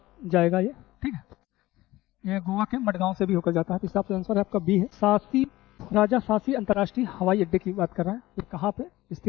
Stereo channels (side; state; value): right; quieter; 17.6 dB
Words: जाएगा ये। ठीक है। ये गोवा के मडगांव से भी होकर जाता है। तो इस हिसाब से आंसर है आपका बी है। राजा सासी अंतर्राष्ट्रीय हवाई अड्डे की बात कर रहा है। ये कहाँ पे